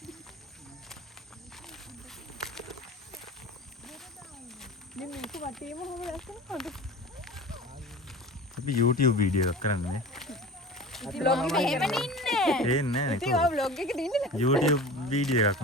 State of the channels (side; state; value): both; normal; correlation 0.36